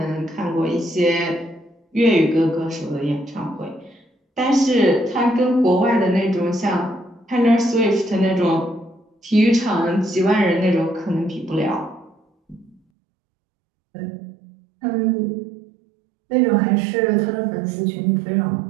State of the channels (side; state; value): left; drops out; at 12.8 s